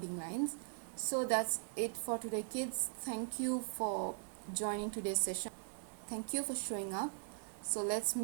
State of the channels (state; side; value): silent; left; digital silence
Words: lines. So that's it for today, kids. Thank you for joining today's session. Thank you for showing up. So let's